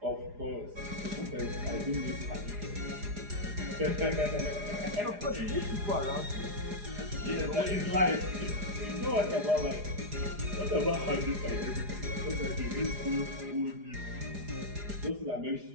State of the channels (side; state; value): left; late; 4.9 ms